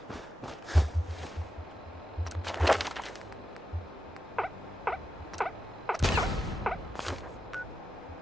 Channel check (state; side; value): normal; both; correlation 0.88